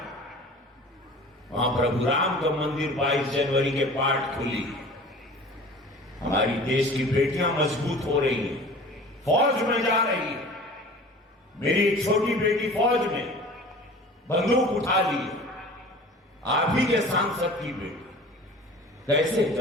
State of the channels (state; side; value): normal; both; correlation 0.42